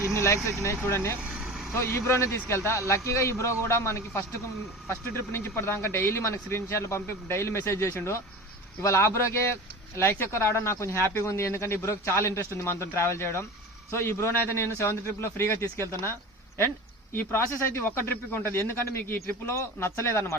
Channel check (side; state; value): both; normal; correlation 0.34